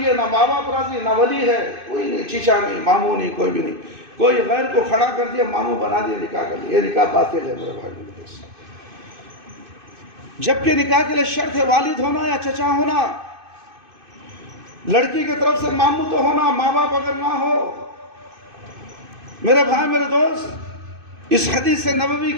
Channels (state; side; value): late; left; 2.5 ms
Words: نہ ماں باپ راضی، نہ ولی ہے، کوئی نہیں، چچا نہیں، ماموں نہیں، کوئی بھی نہیں، کوئی غیر کو کھڑا کر دیا، ماموں بنا دیا، نکاح کر لیا، یہ نکاح باطل ہے میرے بھائی میرے دوست۔ جبکہ نکاح کے لیے شرط ہے والد ہونا یا چچا ہونا، لڑکی کی طرف سے ماموں تو ہونا، ماں باپ اگر نہ ہو۔ میرے بھائی میرے دوست، اس حدیث نبوی